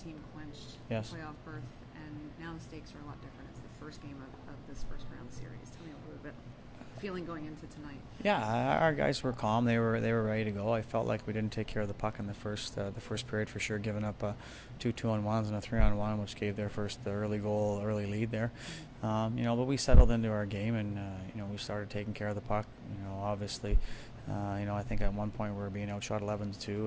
team clinched Yes. the playoff berth, and now the stakes are a lot different. It's the first game of this first round series. Tell me a little bit feeling going into tonight. Yeah, our guys were calm. They were ready to go. I felt like we didn't take care of the puck in the first period for sure, giving up two 2-on-1s and a 3-on-1, which gave their first early lead there. But we settled into our game, and we started taking care of the puck. Obviously, I think at one point we were being outshot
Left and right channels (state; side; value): identical; both; correlation 1.00